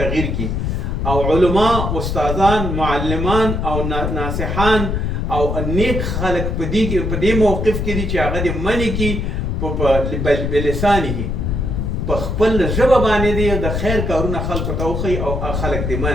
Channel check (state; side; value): noise; left; rumble, 1 dB below the sound